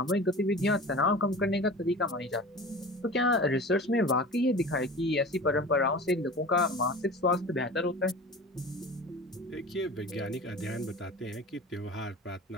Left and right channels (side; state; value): both; normal; correlation 0.36